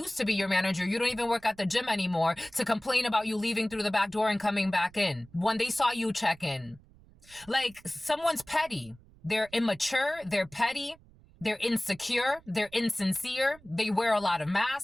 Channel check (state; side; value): noise; right; rumble, 26 dB below the sound